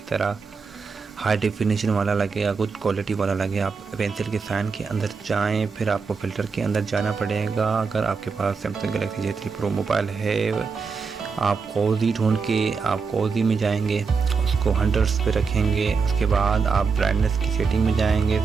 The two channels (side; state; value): left; quieter; 5.2 dB